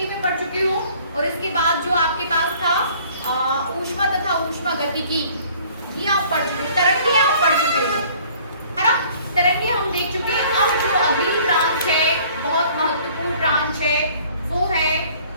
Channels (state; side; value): inverted; both; correlation -0.54